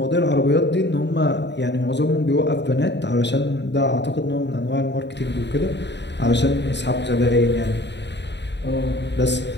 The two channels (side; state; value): right; late; 0.51 ms